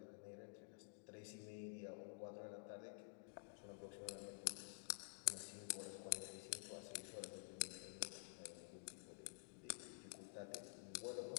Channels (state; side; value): silent; right; digital silence